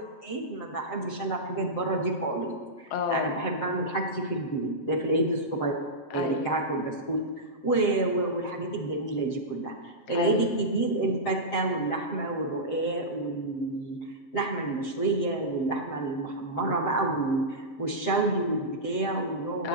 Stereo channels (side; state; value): right; late; 7.7 ms